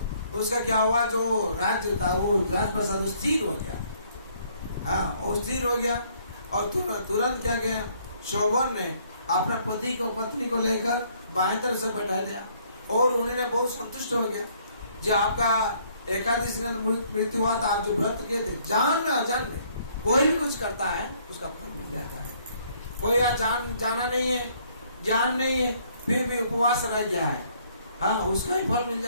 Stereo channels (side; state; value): both; inverted; correlation -0.64